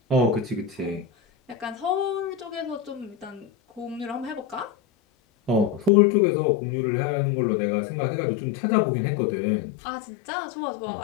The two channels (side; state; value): right; drops out; at 5.9 s